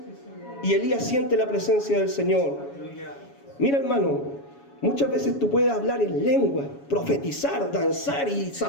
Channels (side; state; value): right; late; 7.2 ms